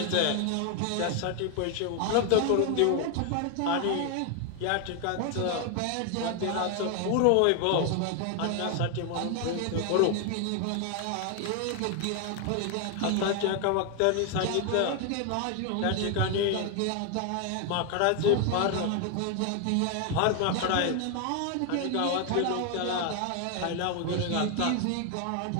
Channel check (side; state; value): both; different; correlation 0.01